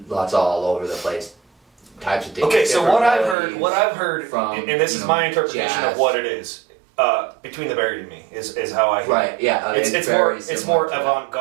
lots all over the place types of things. Okay, so Different what I've melodies heard, from, and this is my interpretation jazz. of what it is. Between the Buried and Me is how I hear it. Right, yeah, It's very more similar to that.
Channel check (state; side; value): drops out; left; at 3.4 s